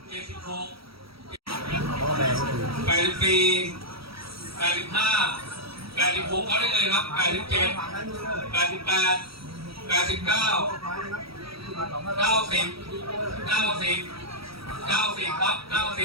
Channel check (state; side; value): late; left; 0.76 ms